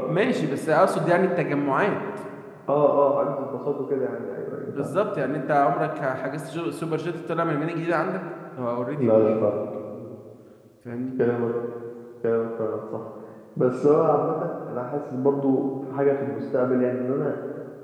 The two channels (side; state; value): both; identical; correlation 1.00